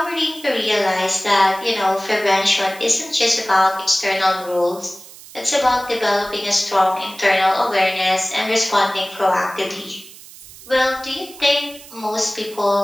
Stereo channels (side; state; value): right; noise; hiss, 19 dB below the sound